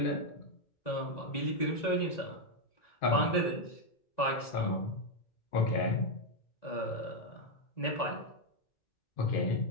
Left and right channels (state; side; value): late; right; 1.9 ms